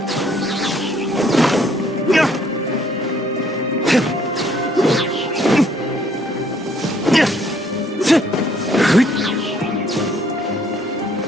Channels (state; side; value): normal; both; correlation 0.64